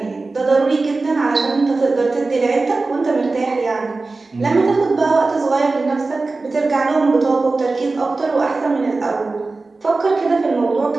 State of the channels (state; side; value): quieter; left; 3.6 dB